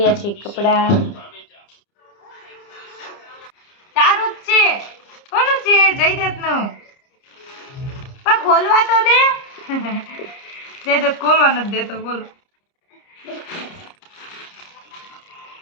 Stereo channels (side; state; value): right; late; 30 ms